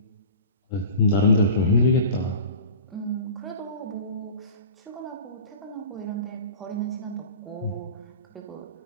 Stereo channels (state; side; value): inverted; both; correlation -0.37